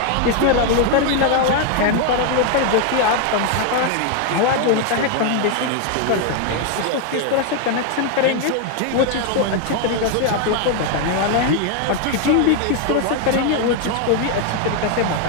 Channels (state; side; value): different; both; correlation 0.01